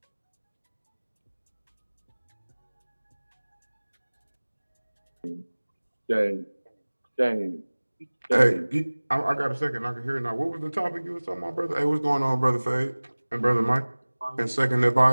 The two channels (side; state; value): both; inverted; correlation -1.00